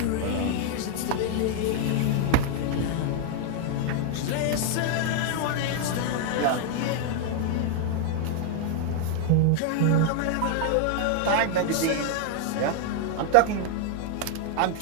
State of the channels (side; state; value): both; different; correlation 0.00